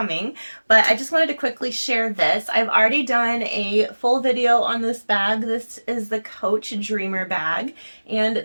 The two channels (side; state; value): both; inverted; correlation -1.00